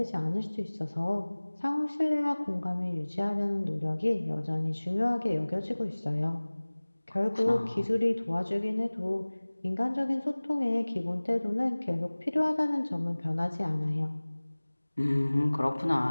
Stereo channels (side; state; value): both; inverted; correlation -1.00